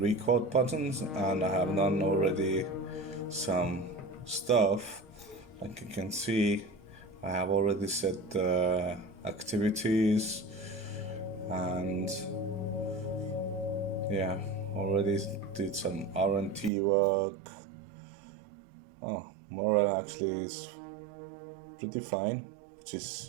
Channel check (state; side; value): drops out; left; at 16.7 s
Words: buttons and I have done already some stuff. Like you can see, I have already set the activities and yeah, already did some R&T work. Morale actually is pretty fine, which is